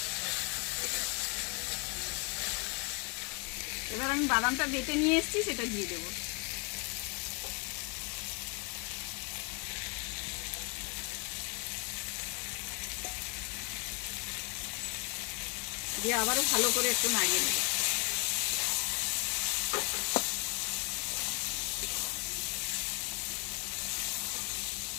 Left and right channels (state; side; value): quieter; right; 32.7 dB